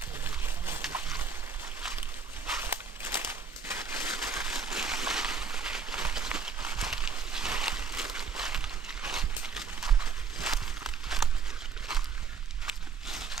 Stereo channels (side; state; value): left; quieter; 5.5 dB